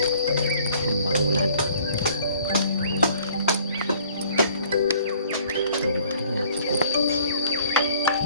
pembangunan rumah rumahnya cukup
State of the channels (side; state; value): both; inverted; correlation -0.56